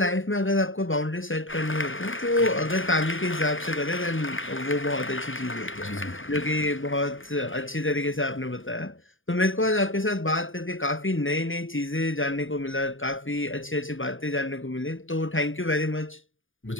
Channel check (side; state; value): right; late; 0.58 ms